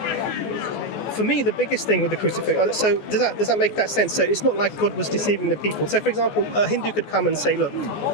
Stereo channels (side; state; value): right; late; 14 ms